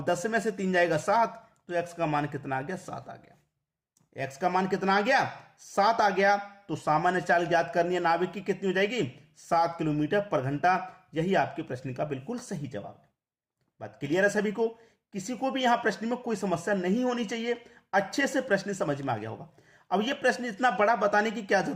10 में से 3 जाएगा 7, तो x का मान कितना आ गया, 7 आ गया। x का मान कितना आ गया, 7 आ गया। तो सामान्य चाल ज्ञात करनी है नाविक की, कितनी हो जाएगी, 7 किलोमीटर पर घंटा। यही आपके प्रश्न का बिल्कुल सही जवाब है। बात क्लियर है सभी को, किसी को भी यहां प्रश्न में कोई समस्या नहीं होनी चाहिए, अच्छे से प्रश्न समझ में आ गया होगा। अब ये प्रश्न इतना बड़ा बताने की क्या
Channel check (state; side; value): identical; both; correlation 1.00